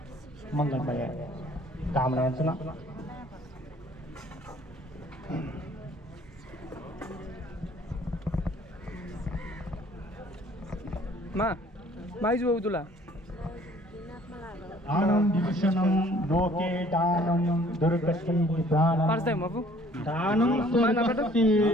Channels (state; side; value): normal; both; correlation 0.57